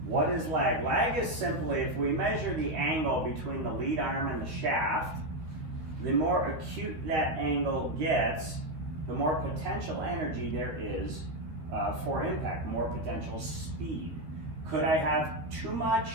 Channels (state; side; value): late; left; 13 ms